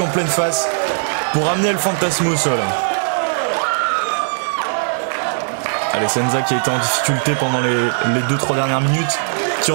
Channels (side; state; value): left; silent; digital silence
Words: pleine face pour ramener El Fantasmo au sol. Allez, Senza qui a été en difficulté pendant les 2-3 dernières minutes, qui